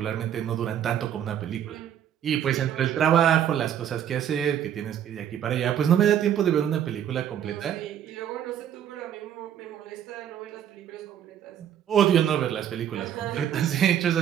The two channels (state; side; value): quieter; left; 9.9 dB